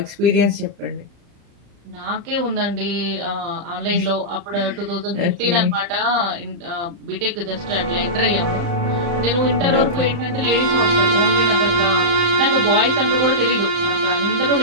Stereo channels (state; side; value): late; left; 35 ms